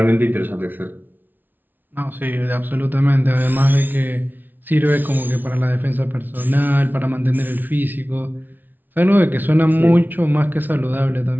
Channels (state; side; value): late; left; 0.088 ms